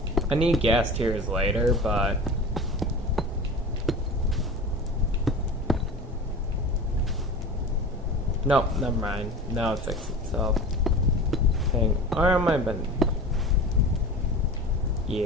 I need gas tiers later, but no, never mind. Now it fixed itself. Dang, where am I been?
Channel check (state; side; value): normal; both; correlation 0.33